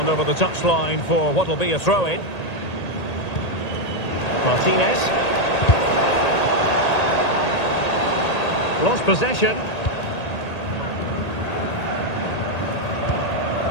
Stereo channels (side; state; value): right; late; 1.8 ms